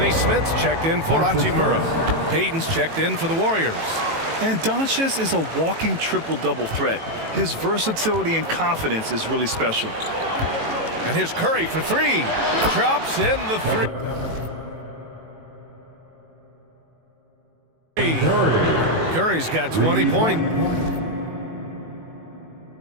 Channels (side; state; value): left; late; 18 ms